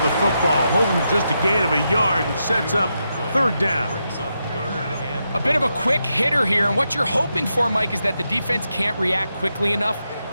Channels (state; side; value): inverted; both; correlation -0.85